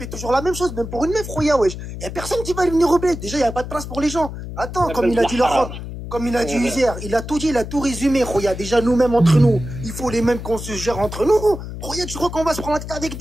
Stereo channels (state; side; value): noise; left; hum, 9 dB below the sound